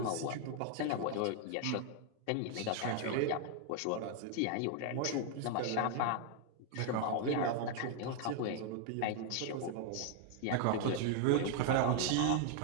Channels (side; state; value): both; different; correlation 0.00